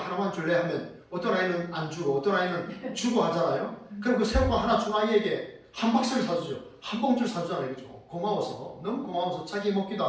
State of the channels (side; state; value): both; identical; correlation 1.00